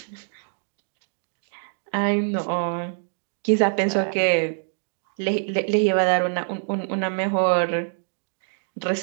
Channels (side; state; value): left; silent; digital silence